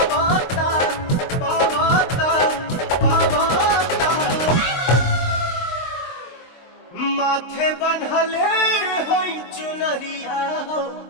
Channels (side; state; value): right; late; 23 ms